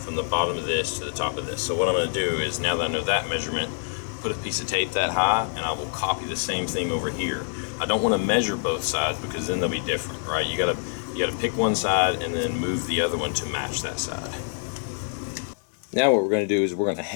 from the bottom of this to the top of this. So what I'm gonna do is, now that I know that measurement, put a piece of tape that high, and I will copy the same thing over here. I don't want to measure both sides because then they'll be different, right? You gotta pick one side and then move the other one to match that side. Now what we're going to do is we're going to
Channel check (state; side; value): silent; right; digital silence